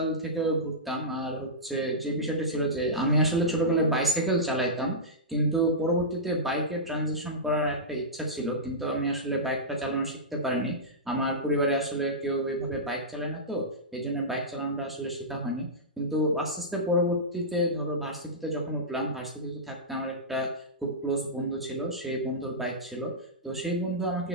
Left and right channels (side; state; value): both; normal; correlation -0.13